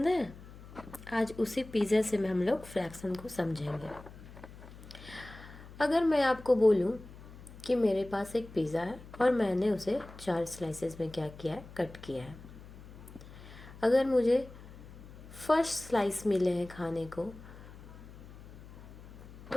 है? आज उसी पिज़्ज़ा से हम लोग फ्रैक्शन को समझेंगे। अगर मैं आपको बोलूं कि मेरे पास एक पिज़्ज़ा है और मैंने उसे 4 स्लाइसेस में क्या किया है, कट किया है। अगर मुझे फर्स्ट स्लाइस मिले हैं खाने को,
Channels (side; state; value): left; noise; hum, 17 dB below the sound